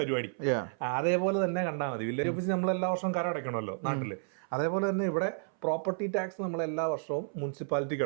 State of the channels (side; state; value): left; silent; 57 dB below the other